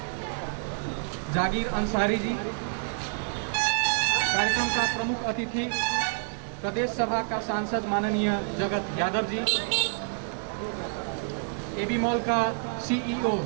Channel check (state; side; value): silent; left; digital silence